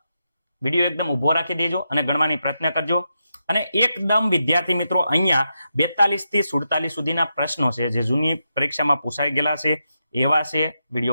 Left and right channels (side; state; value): both; inverted; correlation -0.86